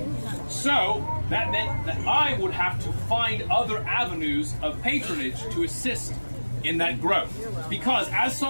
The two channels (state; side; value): inverted; both; correlation -1.00